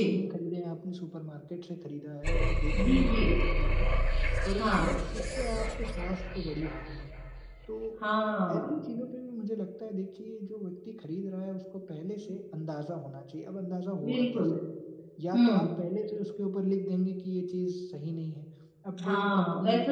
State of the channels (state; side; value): identical; both; correlation 1.00